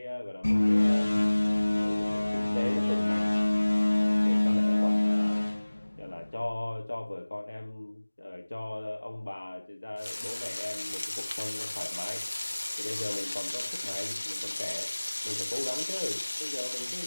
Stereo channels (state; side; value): inverted; both; correlation -1.00